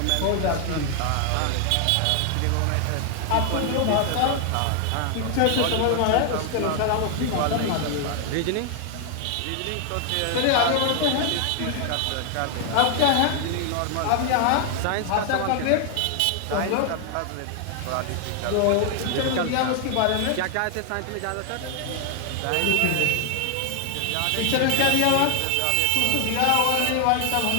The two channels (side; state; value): both; different; correlation 0.00